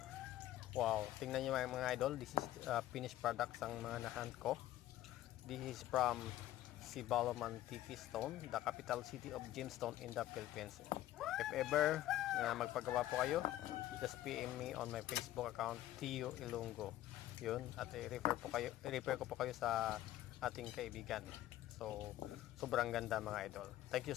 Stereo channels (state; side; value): quieter; right; 14.2 dB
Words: Wow, tingnan niyo mga idol. This is finished products ang mga na-hand ko. This is from Sibaloman Tiki Stone, the capital city of gemstone in the Philippines. If ever magpagawa po kayo, just PM me on my Facebook account, Tio Ilonggo. Yun, at i-refer ko po kayo sa ating kaibigan. So, sobrang ganda mga idol. Thank